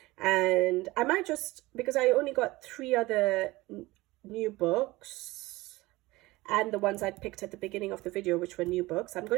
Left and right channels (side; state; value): left; quieter; 20.2 dB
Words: and I might just, because I only got 3 other new books and the ones I'd picked at the beginning of the video, which were new books, I'm